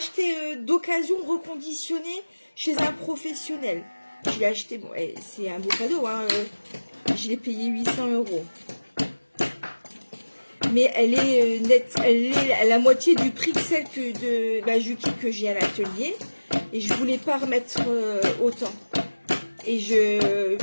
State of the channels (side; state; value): both; inverted; correlation -1.00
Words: d'occasion reconditionné chez un professionnel. Je l'ai acheté, bon, c'est un beau cadeau, hein, je l'ai payé 800 €. Mais elle est nette, elle est à la moitié du prix que celle de la Juki que j'ai à l'atelier. Et je voulais pas remettre autant. Et